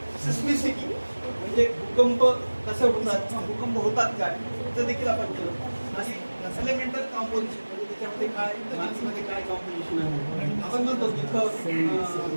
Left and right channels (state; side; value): inverted; both; correlation -1.00